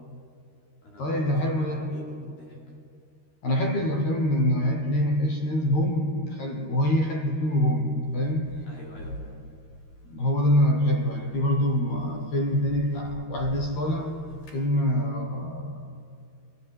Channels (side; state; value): right; late; 13 ms